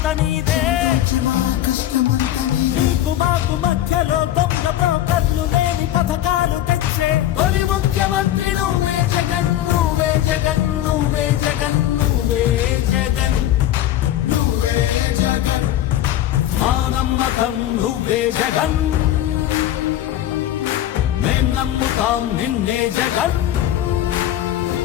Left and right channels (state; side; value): quieter; right; 12.6 dB